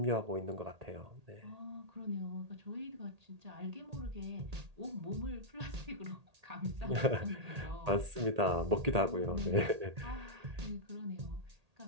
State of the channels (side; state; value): left; late; 1.8 ms